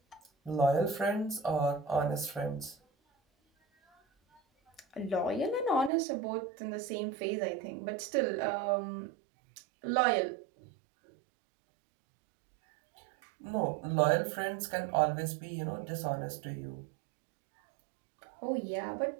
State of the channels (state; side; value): drops out; left; at 5.9 s